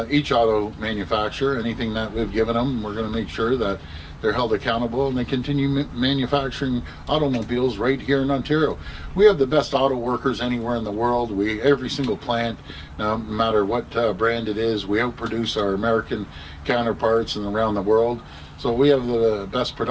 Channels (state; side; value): identical; both; correlation 1.00